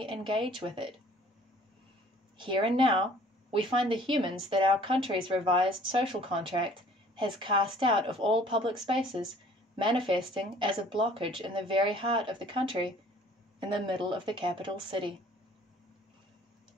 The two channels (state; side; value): normal; both; correlation 0.54